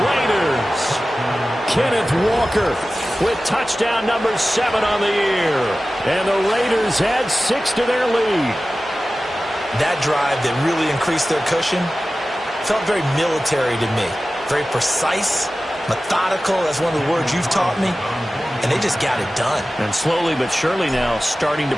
Raiders. Kenneth Walker with touchdown number 7 on the year. And the Raiders add 6 to their lead. That drive that really increased their cushion felt very military to me. Very precise, methodical. That's one of the words you've taught me. And they just got it done. And slowly but surely now starting to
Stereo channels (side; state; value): both; normal; correlation 0.96